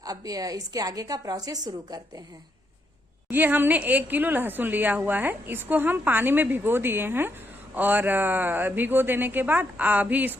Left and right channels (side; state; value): both; normal; correlation 0.78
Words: अब इसके आगे का प्रोसेस शुरू करते हैं। ये हमने 1 किलो लहसुन लिया हुआ है, इसको हम पानी में भिगो दिए हैं और भिगो देने के बाद अभी